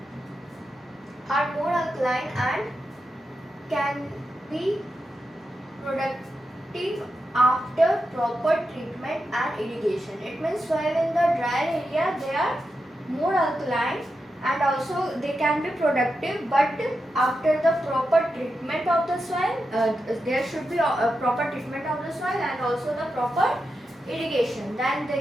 are more alkaline and can be productive after proper treatment and irrigation. It means soil in the drier area they are more alkaline and also they can be productive, but after the proper treatment of the soil, there should be a proper treatment of the soil and also the proper irrigation, then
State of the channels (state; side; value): normal; both; correlation 0.88